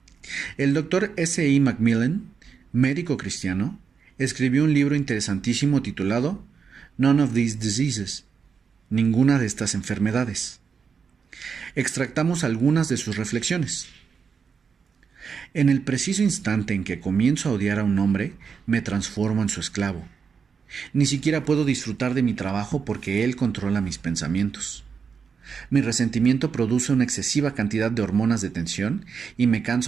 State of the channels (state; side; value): quieter; left; 6.1 dB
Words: El Dr. S. E. Macmillan, médico cristiano, escribió un libro interesantísimo titulado None of These Diseases, ninguna de estas enfermedades. Extractamos algunas de sus reflexiones. En el preciso instante en que comienzo a odiar a un hombre, me transformo en su esclavo. Ni siquiera puedo disfrutar de mi trabajo porque él controla mis pensamientos. Mi resentimiento produce una excesiva cantidad de hormonas de tensión y me